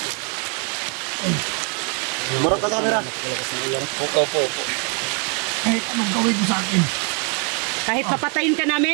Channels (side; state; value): left; quieter; 37.0 dB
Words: Umurap ka sa camera. Kahit anong gawin mo sa akin, Kahit papatayin ka namin,